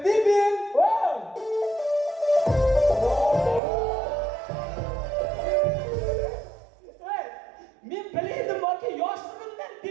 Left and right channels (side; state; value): left; drops out; at 3.6 s